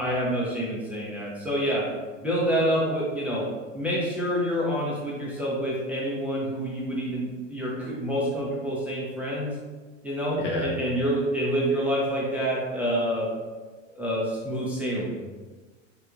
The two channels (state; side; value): normal; both; correlation 0.32